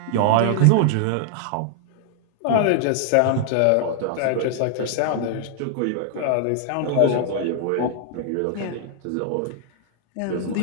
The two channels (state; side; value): different; both; correlation -0.01